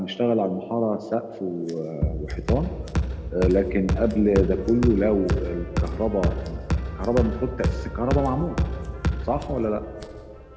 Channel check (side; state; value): both; identical; correlation 1.00